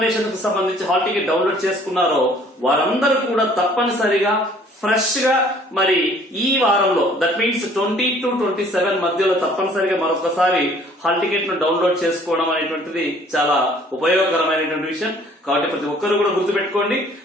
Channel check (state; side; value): normal; both; correlation 0.56